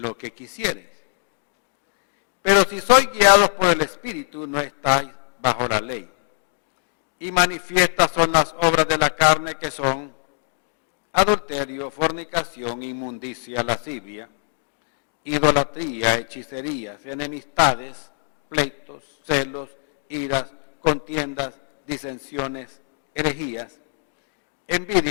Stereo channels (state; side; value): silent; right; 59 dB below the other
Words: que quisieres. Pero si sois guiados por el espíritu, no estáis bajo la ley. Y manifiestas son las obras de la carne, que son adulterio, fornicación, inmundicia, lascivia, idolatría, hechicerías, enemistades, pleitos, celos, iras, contiendas, disensiones, herejías,